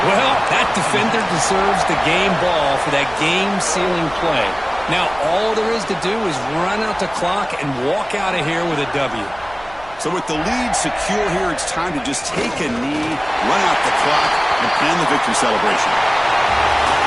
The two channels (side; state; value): right; noise; rumble, 22 dB below the sound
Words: Well, that defender deserves the game ball for that game-sealing play. Now, all there is to do is run out the clock and walk out of here with a W. So with the lead secure here, it's time to just take a knee, run out the clock, and plan the victory celebration.